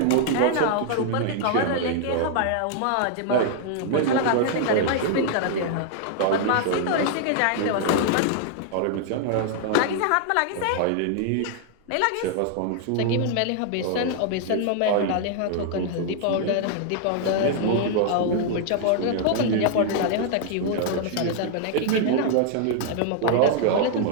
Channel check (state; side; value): different; both; correlation -0.01